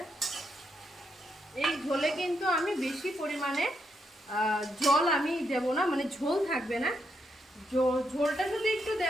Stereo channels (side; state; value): both; normal; correlation 0.80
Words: এই ঝোলে কিন্তু আমি বেশি পরিমাণে জল আমি দেব না, মানে ঝোল থাকবে না। ঝোলটা শুধু একটু